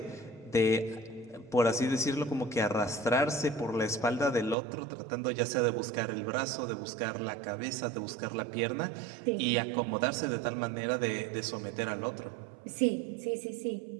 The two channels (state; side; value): drops out; left; at 4.5 s